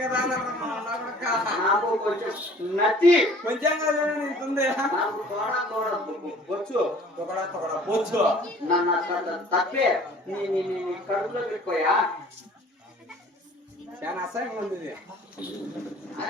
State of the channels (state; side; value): normal; both; correlation 0.51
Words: కదా నాకు కొంచెం నచ్చి కొంచెం కదా నీకుంది నాకు బొచ్చు బొచ్చు తప్పే నీ కడుపులో పెట్టుకోయా చాలా అసహ్యంగా ఉంది ఇది.